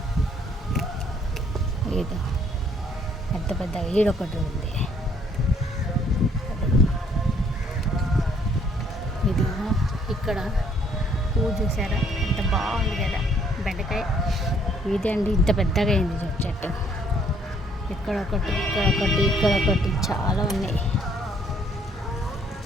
ఏదో పెద్ద పెద్దగా ఈడొకటి ఉంది. ఇది ఇక్కడ పువ్వు చూసారా ఎంత బాగుంది కదా బెండకాయ. ఇదే అండి ఇంత పెద్దగా అయింది చెట్టు. ఇక్కడొకటి ఇక్కడొకటి ఇక్కడొకటి చాలా ఉన్నాయి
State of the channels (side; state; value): both; normal; correlation 0.64